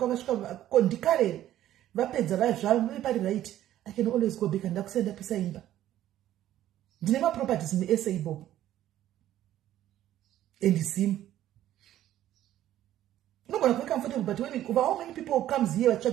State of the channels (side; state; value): left; quieter; 12.8 dB